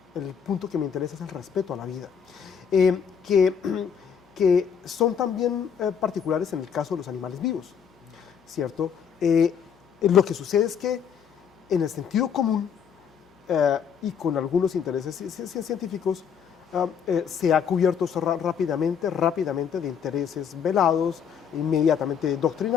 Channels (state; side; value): quieter; right; 7.4 dB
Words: El punto que me interesa es el respeto a la vida, que son también particulares en el caso de los animales vivos, ¿cierto? Lo que sucede es que en el sentido común y con algunos intereses científicos se ha cubierto rápidamente de intereses velados, inmediatamente